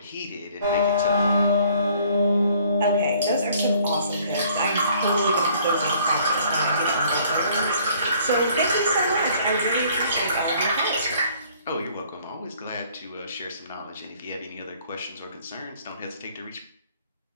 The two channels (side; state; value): both; inverted; correlation -0.59